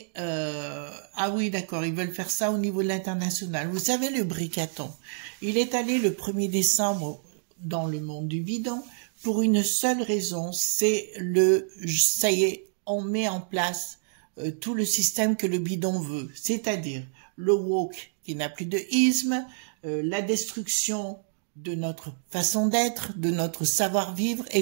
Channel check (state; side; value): silent; left; digital silence